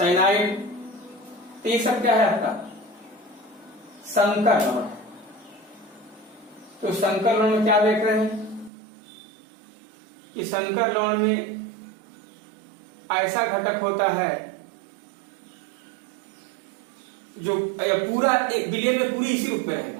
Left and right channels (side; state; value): left; drops out; at 8.7 s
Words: तो ये सब क्या है आपका संकर लवण। तो संकर लवण में क्या देख रहे हैं कि संकर लवण में ऐसा घटक होता है जो पूरा एक विलयन में पूरी इसी रूप में